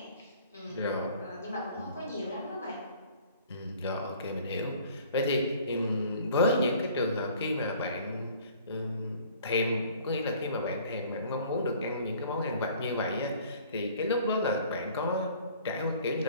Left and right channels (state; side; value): inverted; both; correlation -0.52